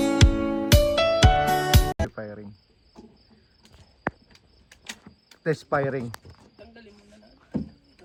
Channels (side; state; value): both; identical; correlation 1.00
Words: Firing. Test firing. Tanggalin mo na natin.